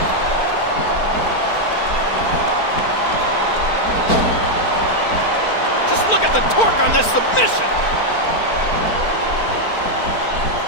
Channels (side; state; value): right; late; 4.5 ms